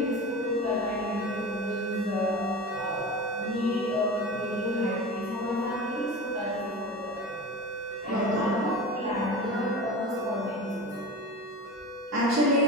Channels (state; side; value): normal; both; correlation 0.30